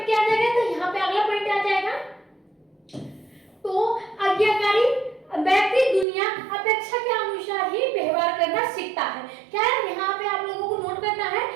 क्या आ जाएगा, तो यहाँ पे अगला पॉइंट आ जाएगा, तो आज्ञाकारी व्यक्ति दुनिया अपेक्षा के अनुसार ही व्यवहार करना सीखता है। क्या है, यहाँ पे आप लोगों को नोट करना है,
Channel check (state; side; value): drops out; left; at 6.1 s